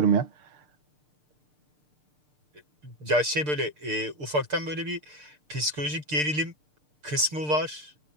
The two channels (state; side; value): late; left; 6.7 ms